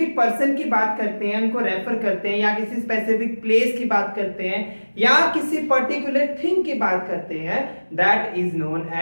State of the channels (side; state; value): both; inverted; correlation -1.00